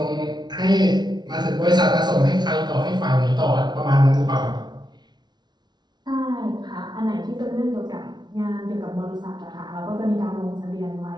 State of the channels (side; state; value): left; late; 0.20 ms